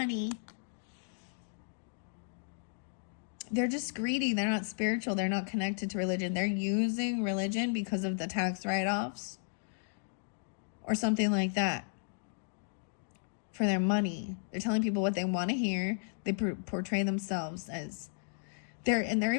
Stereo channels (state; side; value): silent; right; digital silence